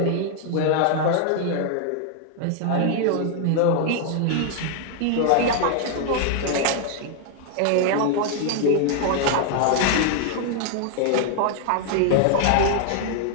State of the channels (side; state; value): both; different; correlation 0.00